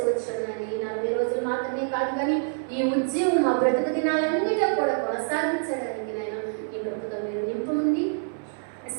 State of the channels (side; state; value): left; silent; 59 dB below the other